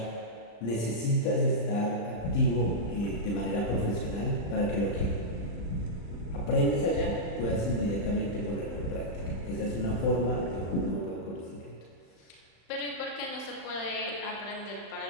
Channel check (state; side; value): late; right; 35 ms